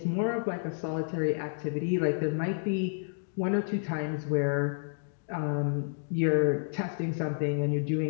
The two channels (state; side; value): silent; right; digital silence